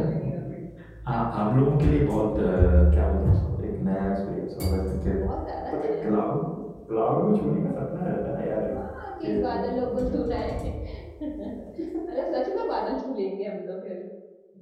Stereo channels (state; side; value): identical; both; correlation 1.00